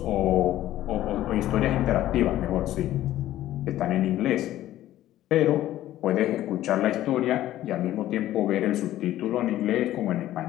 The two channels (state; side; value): quieter; right; 13.8 dB